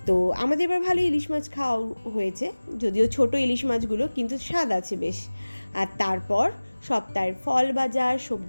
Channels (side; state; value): both; inverted; correlation -1.00